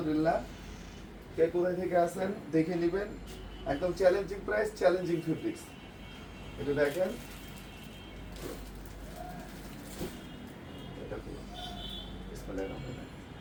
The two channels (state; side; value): identical; both; correlation 1.00